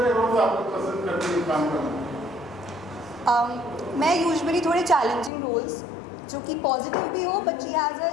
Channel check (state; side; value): drops out; right; at 5.3 s